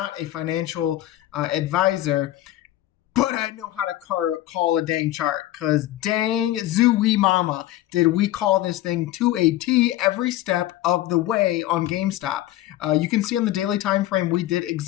a financial advisor. But I know how to call a dang chart, because dang zooey mama, did we call this thing to a T every step of the way on GameStop. You can see on the daily time frame, we did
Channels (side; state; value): right; quieter; 14.7 dB